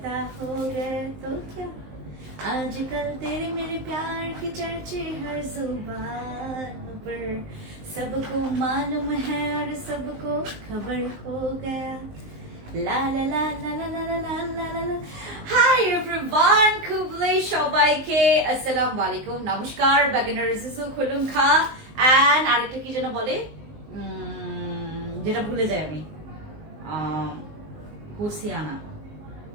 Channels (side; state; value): left; late; 19 ms